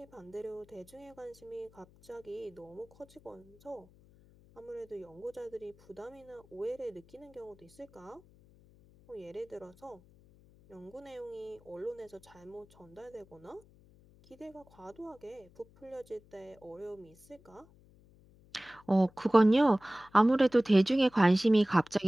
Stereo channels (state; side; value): noise; left; hum, 26 dB below the sound